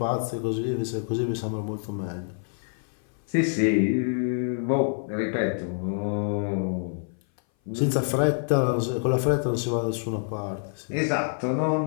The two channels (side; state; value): right; silent; 58 dB below the other